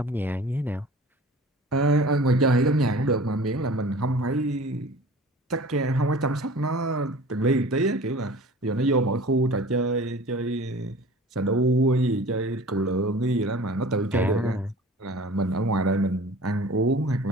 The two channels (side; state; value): both; normal; correlation 0.43